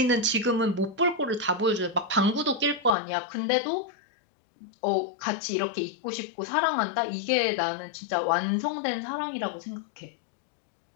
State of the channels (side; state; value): right; drops out; at 3.0 s